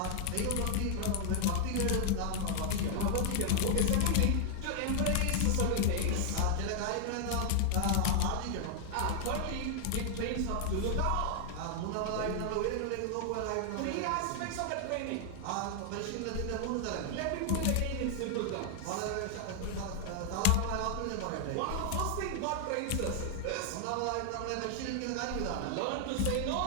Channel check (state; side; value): different; both; correlation 0.00